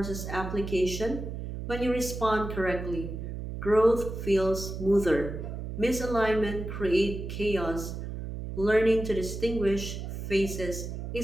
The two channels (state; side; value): noise; right; hum, 6 dB below the sound